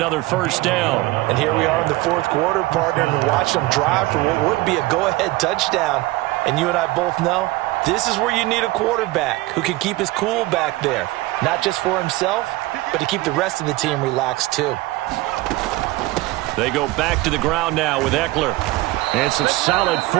first down. And here we are in the 4th quarter, partner, and watch them drive for what would be a go-ahead touchdown. And you and I both know this is where you need a quarterback who can keep his cool back there. Not just for himself, but to keep the rest of the team relaxed too. They go back to the ground now with Ekeler. And some solid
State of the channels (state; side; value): quieter; left; 19.5 dB